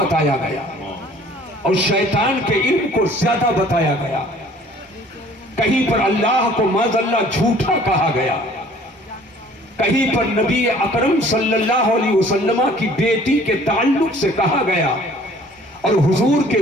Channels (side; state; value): both; normal; correlation 0.53